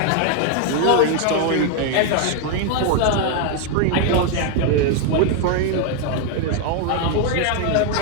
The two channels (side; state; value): both; different; correlation 0.01